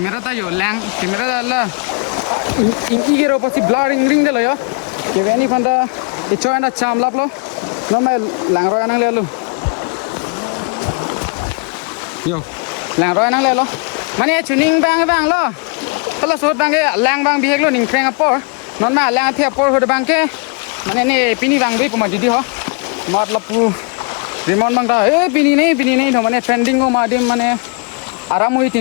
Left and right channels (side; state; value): right; quieter; 34.1 dB